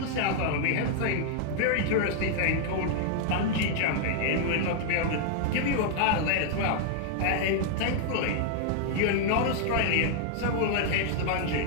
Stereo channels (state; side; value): different; both; correlation 0.00